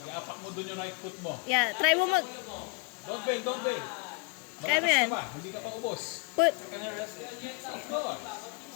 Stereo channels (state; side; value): quieter; right; 29.2 dB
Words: Iapak mo dun yung right foot mo. Yeah, try mo mag... Don't bail, don't bail. Kaya mo yan. Hindi ka pa ubos. Put... Go.